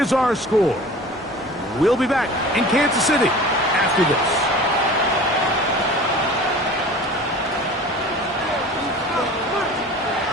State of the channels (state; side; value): normal; both; correlation 0.41